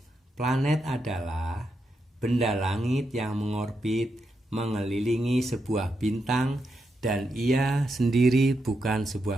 Planet adalah benda langit yang mengorbit mengelilingi sebuah bintang dan ia sendiri bukan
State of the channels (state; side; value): normal; both; correlation 0.84